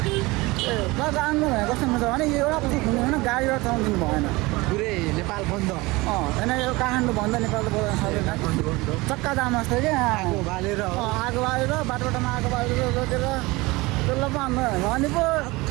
तर आन्दोलन भनेको कस्तो हुन्छ भने यो एउटा पछि हुने होइन गाडीबाट चलाउनु दिनु भएन। पुरै नेपाल बन्द होइन यो काठमाडौँ बन्द नेपालको बोल्न सक्दैन चक्का जाम जस्तो क्या आगो बालेर बाटोमा आगो बालेर रोकेर त्यसलाई पो आन्दोलन अनि पो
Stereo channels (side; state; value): left; quieter; 22.4 dB